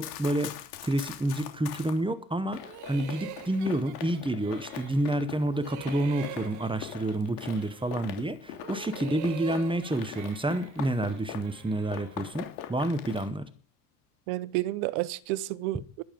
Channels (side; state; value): both; normal; correlation 0.70